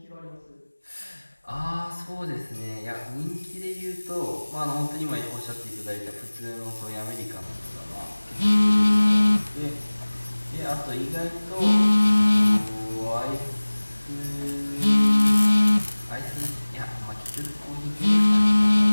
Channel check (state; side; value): inverted; both; correlation -1.00